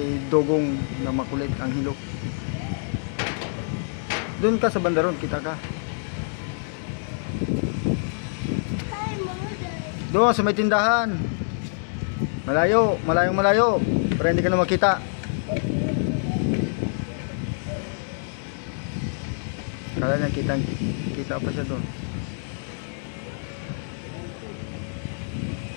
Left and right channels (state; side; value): silent; right; digital silence